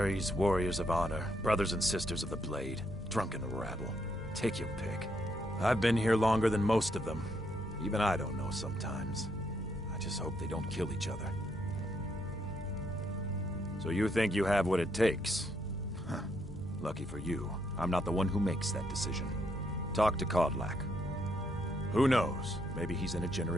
warriors of honor, brothers and sisters of the blade, drunken rabble. Take your pick. I've been here longer than most of them. Even I don't know sometimes. I just hope they don't kill each other. So you think you have what it takes? Huh. Lucky for you, I'm not the one who makes that decision. Talk to Kodlak. Who knows? Maybe he's in a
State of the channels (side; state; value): both; normal; correlation 0.75